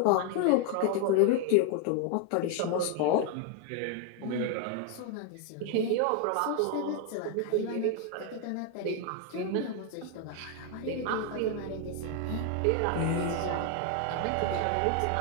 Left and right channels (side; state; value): both; different; correlation 0.01